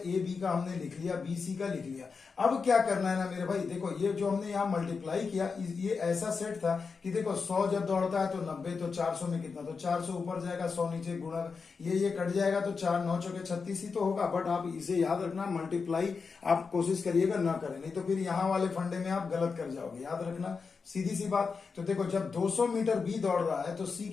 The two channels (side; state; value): right; quieter; 5.1 dB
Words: बी का हमने लिख लिया, बी सी का लिख लिया। अब क्या करना है ना मेरे भाई, देखो ये जो हमने यहाँ मल्टीप्लाई किया, ये ऐसा सेट था कि देखो 100 जब दौड़ता है तो 90, तो 400 में कितना, तो 400 ऊपर जाएगा, 100 नीचे, गुणा ये कट जाएगा, तो 4 9 चौके 36 ही तो होगा। बट आप इसे याद रखना, मल्टीप्लाई आप कोशिश करिएगा ना करें, नहीं तो फिर यहाँ वाले फंडे में आप गलत कर जाओगे, याद रखना, सीधी सी बात। तो देखो जब 200 मीटर बी दौड़ रहा है तो सी